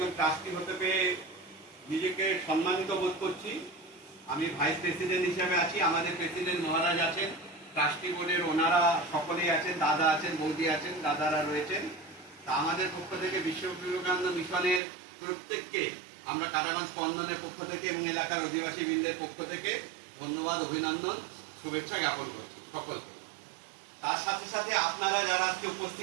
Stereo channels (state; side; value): drops out; left; at 14.8 s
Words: ট্রাস্টি হতে পেরে নিজেকে সম্মানিত বোধ করছি। আমি ভাইস প্রেসিডেন্ট হিসেবে আছি, আমাদের প্রেসিডেন্ট মহারাজ আছেন, ট্রাস্টি বোর্ডের ওনারা সকলেই আছেন, দাদা আছেন, বৌদি আছেন, দাদারা রয়েছেন। তা আমাদের পক্ষ থেকে বিশ্ব বিবেকানন্দ মিশনের প্রত্যেককে আমরা কাটাগঞ্জ স্পন্দনের পক্ষ থেকে এবং এলাকার অধিবাসী বৃন্দের পক্ষ থেকে ধন্যবাদ, অভিনন্দন, শুভেচ্ছা জ্ঞাপন করছি সকলকে। তার সাথে সাথে আপনারা যারা আজকে